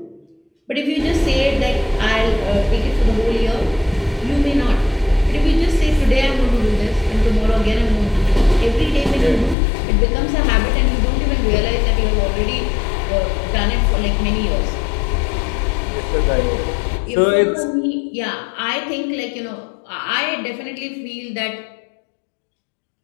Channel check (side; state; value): right; drops out; at 9.6 s